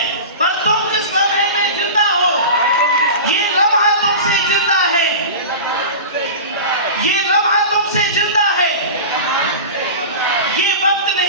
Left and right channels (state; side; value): inverted; both; correlation -0.30